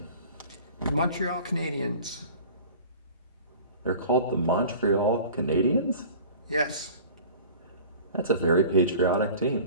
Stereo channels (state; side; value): inverted; both; correlation -0.43